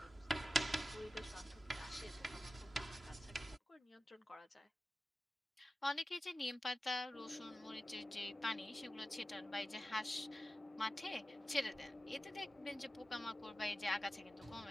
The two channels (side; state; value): both; normal; correlation 0.94